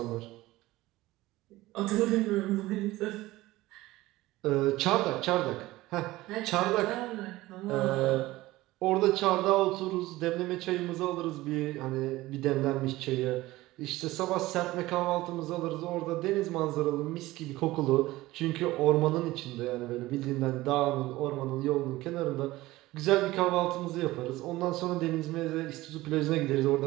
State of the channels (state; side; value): quieter; left; 18.1 dB